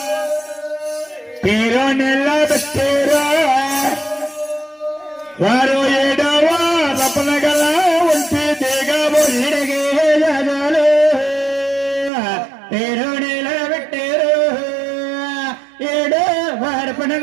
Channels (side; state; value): left; drops out; at 12.1 s